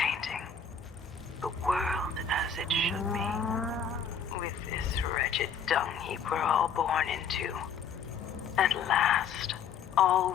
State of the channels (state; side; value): quieter; right; 6.3 dB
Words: The world as it should be. With this wretched dung heap we're all born into. At last, all